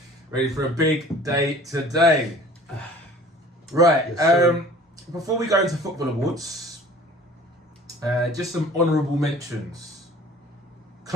Ready for a big day today. Right, Yes, before we go into football awards, just some honourable mentions.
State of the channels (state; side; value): normal; both; correlation 0.47